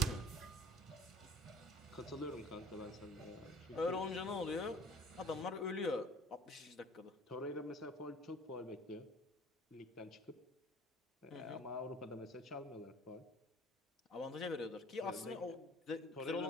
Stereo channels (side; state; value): both; normal; correlation 0.48